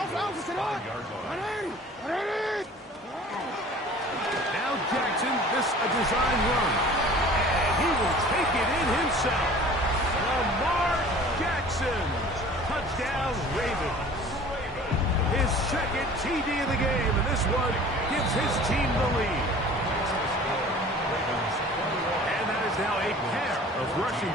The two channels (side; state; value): both; normal; correlation 0.46